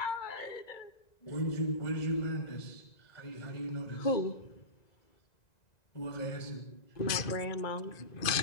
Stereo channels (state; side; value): late; right; 1.9 ms